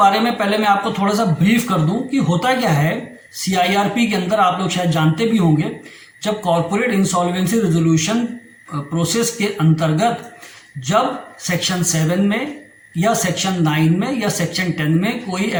में पहले मैं आपको थोड़ा सा ब्रीफ कर दूं कि होता क्या है। CIRP के अंदर आप लोग शायद जानते भी होंगे, जब कॉर्पोरेट इंसॉल्वेंसी रेजोल्यूशन प्रोसेस के अंतर्गत जब सेक्शन 7 में या सेक्शन 9 में या सेक्शन 10 में कोई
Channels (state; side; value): identical; both; correlation 1.00